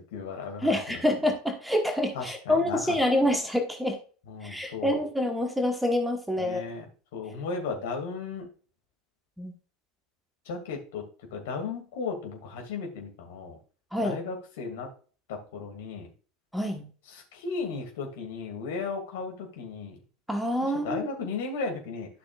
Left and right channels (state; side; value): normal; both; correlation 0.60